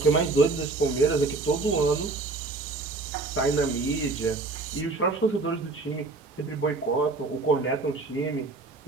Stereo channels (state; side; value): quieter; left; 3.6 dB